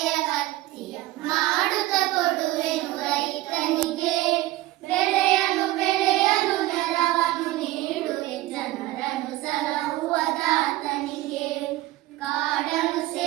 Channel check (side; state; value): left; quieter; 17.1 dB